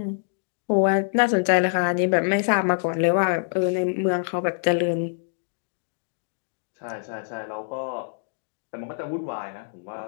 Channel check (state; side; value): silent; right; digital silence